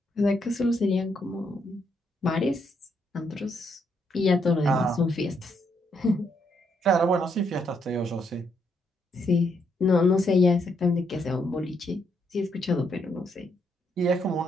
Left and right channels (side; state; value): both; normal; correlation 0.76